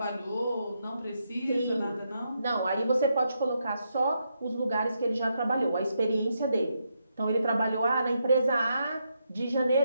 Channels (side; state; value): both; inverted; correlation -0.81